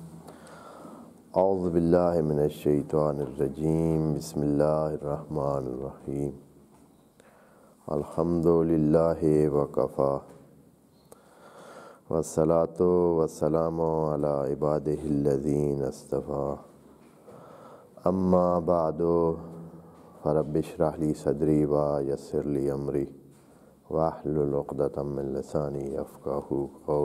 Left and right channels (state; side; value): identical; both; correlation 1.00